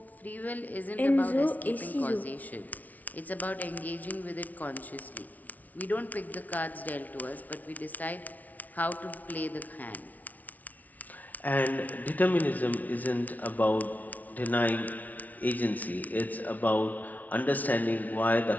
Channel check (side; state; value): right; late; 0.075 ms